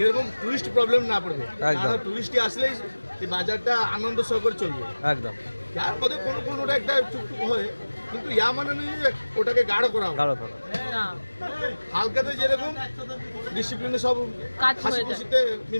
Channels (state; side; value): inverted; both; correlation -1.00